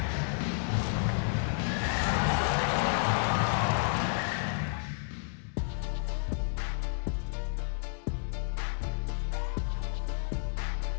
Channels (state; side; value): silent; right; digital silence